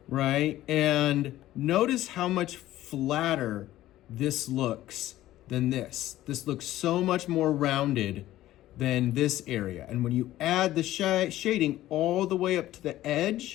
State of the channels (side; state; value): right; quieter; 14.7 dB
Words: Right? And notice how much flatter this looks than this. This looks so much more rounded than this area. And when you add the shading all the way up to the